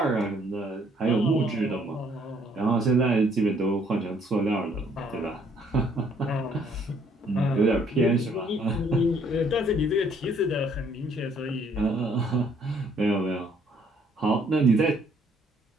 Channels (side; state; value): both; normal; correlation 0.64